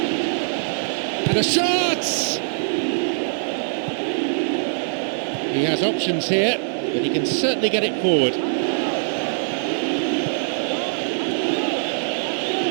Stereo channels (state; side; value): silent; left; digital silence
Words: And a shot! He has options here, but he can certainly get it forward.